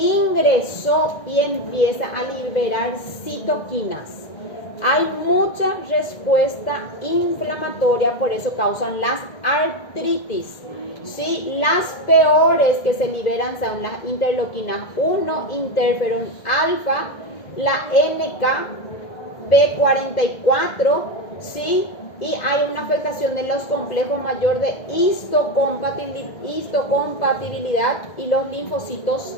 y empieza a liberar citoquinas. Hay mucha respuesta inflamatoria, por eso causan las artritis. ¿Sí? Las peores que se liberan son las interleuquinas 1, interferón alfa, la NK-B44, ¿sí? Y hay una afectación de los complejos mayor de histocompatibilidad y los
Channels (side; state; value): right; late; 2.1 ms